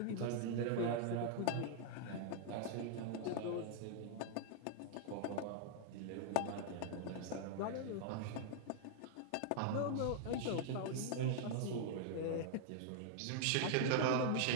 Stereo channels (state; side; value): different; both; correlation -0.01